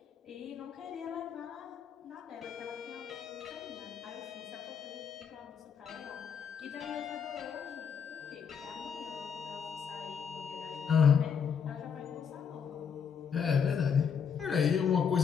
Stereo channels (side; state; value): right; quieter; 7.0 dB